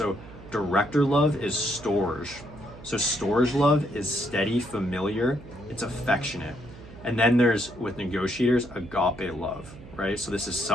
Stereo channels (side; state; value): right; noise; hum, 17 dB below the sound